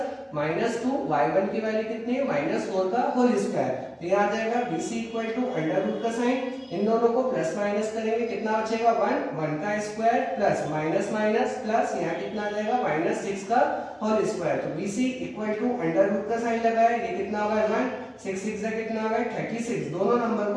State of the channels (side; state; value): both; identical; correlation 1.00